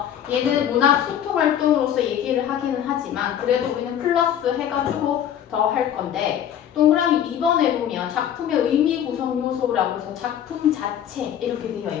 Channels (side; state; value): right; quieter; 9.9 dB